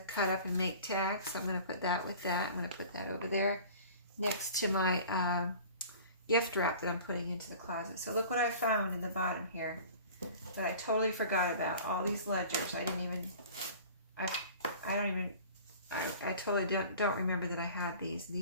cut up and make tags. So I'm going to put that with that. I'm going to put that over there next to my gift wrap that I'm putting into the closet. So look what I found in the bottom here that I totally forgot about. All these ledgers. I totally don't remember that I had these.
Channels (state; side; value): inverted; both; correlation -0.43